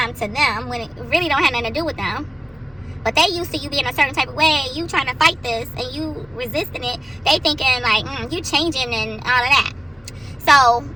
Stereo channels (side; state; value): both; normal; correlation 0.97